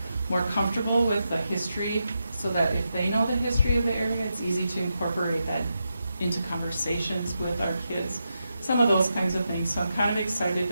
more comfortable with the history so that if they know the history of the area, it's easy to incorporate that into conversations with our kids. Some of those kinds of things. So I'm kind of excited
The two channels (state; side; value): inverted; both; correlation -0.87